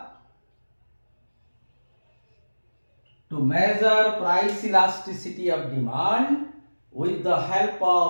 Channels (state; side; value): inverted; both; correlation -1.00